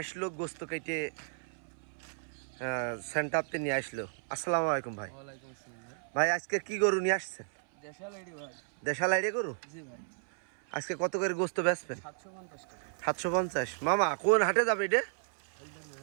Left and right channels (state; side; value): silent; left; 56 dB below the other